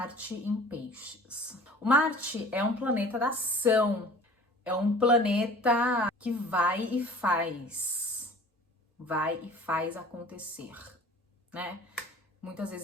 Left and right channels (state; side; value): normal; both; correlation 0.46